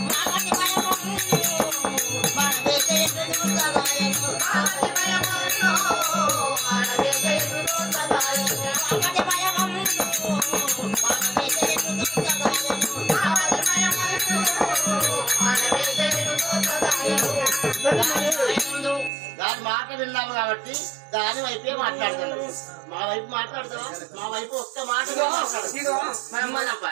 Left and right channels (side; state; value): left; drops out; at 19.1 s